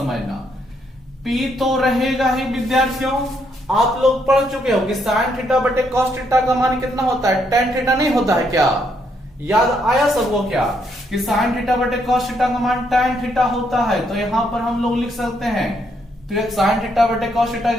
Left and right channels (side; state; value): both; normal; correlation 0.74